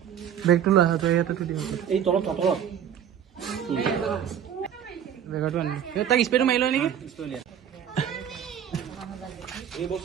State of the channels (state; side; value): quieter; left; 9.3 dB